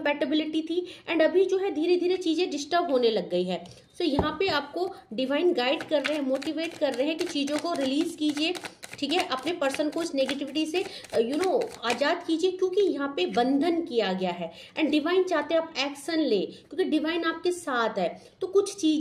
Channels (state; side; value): identical; both; correlation 1.00